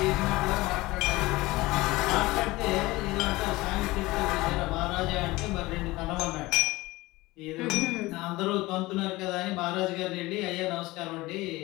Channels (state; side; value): quieter; right; 20.2 dB